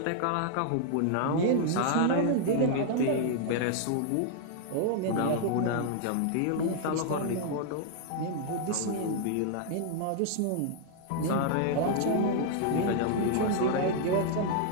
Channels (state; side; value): different; both; correlation -0.01